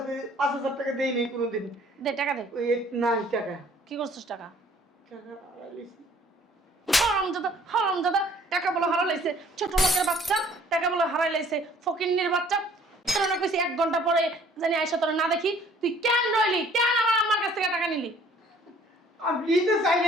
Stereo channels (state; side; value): normal; both; correlation 0.56